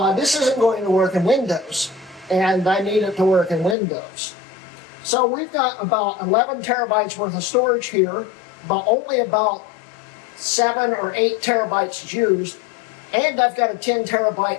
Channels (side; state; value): right; drops out; at 3.8 s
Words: this isn't going to work in Windows, and I need it to work in Windows. So we've got about 11 terabytes worth of storage here, but only about 7 or 8 terabytes used, and I've got a 10